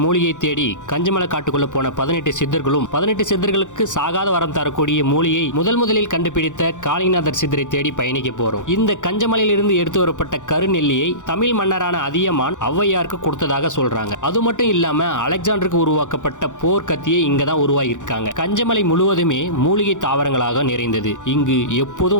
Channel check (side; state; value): right; late; 0.86 ms